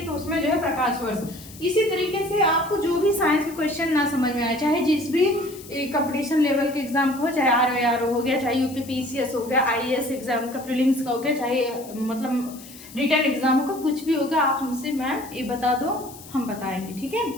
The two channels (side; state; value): left; noise; hiss, 18 dB below the sound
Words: तो उसमें जो है प्रकाश वर्ष। इसी तरीके से आपको जो भी साइंस के क्वेश्चन ना समझ में आए, चाहे जिस भी कंपटीशन लेवल के एग्जाम का हो, चाहे आरओ हो गया, चाहे यूपीपीसीएस हो गया, आईएएस एग्जाम का प्रीलिम्स का हो गया, चाहे मतलब रिटर्न एग्जाम का कुछ भी होगा, आप हमसे मैम ये बता दो, हम बताएंगे। ठीक है,